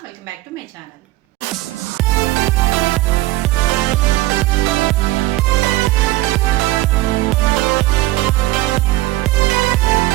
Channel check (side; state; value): left; quieter; 17.8 dB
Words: Welcome back to my channel.